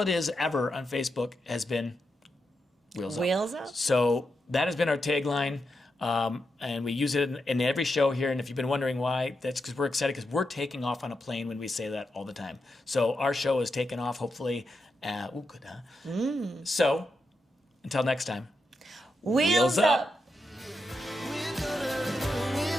it is ever on Facebook, has been wheels up. Wheels up? So that has been our tagline, and we use it in every show here. And if you've been wondering why, that's because we're excited, because we're taking off on a plane when we say that all the time. So our show is taking off, hopefully. Good, huh? So until next time, Wheels up.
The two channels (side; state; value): both; normal; correlation 0.86